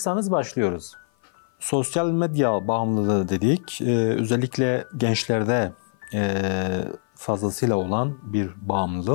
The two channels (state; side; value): silent; right; 56 dB below the other